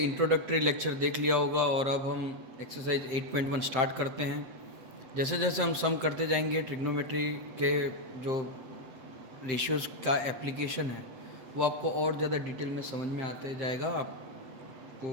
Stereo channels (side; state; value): left; late; 8.1 ms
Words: लेक्चर देख लिया होगा और अब हम एक्सरसाइज 8.1 स्टार्ट करते हैं। जैसे जैसे हम सम करते जाएंगे, ट्रिग्नोमेट्री के जो रेशियोज़ का एप्लीकेशन है वो आपको और ज़्यादा डिटेल में समझ में आते जाएगा,